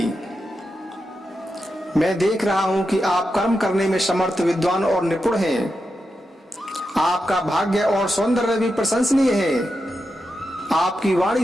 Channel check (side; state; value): both; normal; correlation 0.88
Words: मैं देख रहा हूं कि आप कर्म करने में समर्थ, विद्वान और निपुण हैं। आपका भाग्य और सौंदर्य भी प्रशंसनीय है। आपकी